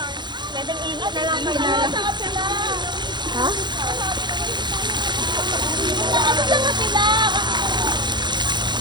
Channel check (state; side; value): late; left; 0.21 ms